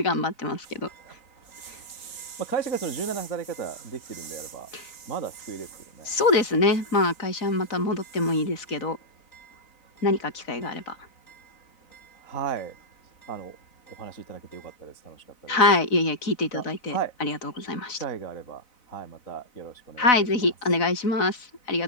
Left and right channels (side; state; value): right; late; 4.0 ms